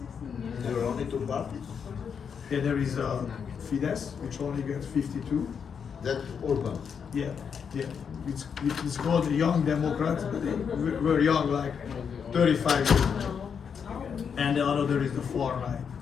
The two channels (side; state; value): right; quieter; 6.8 dB